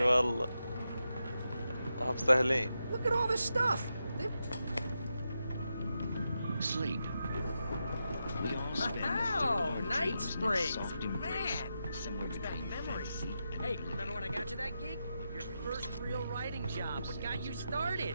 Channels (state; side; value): inverted; both; correlation -0.87